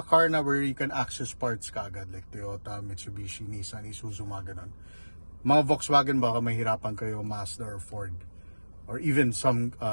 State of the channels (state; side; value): inverted; both; correlation -1.00